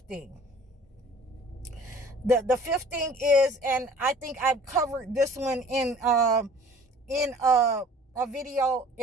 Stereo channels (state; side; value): normal; both; correlation 0.49